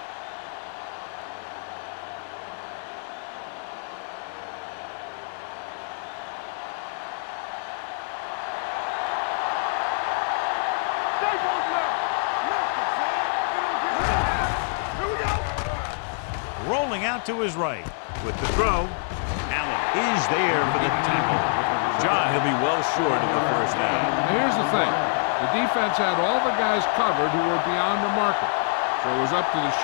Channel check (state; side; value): silent; right; 61 dB below the other